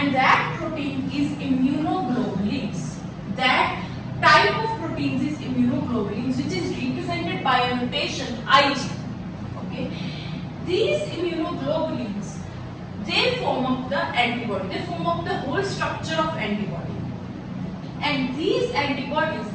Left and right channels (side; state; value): both; identical; correlation 1.00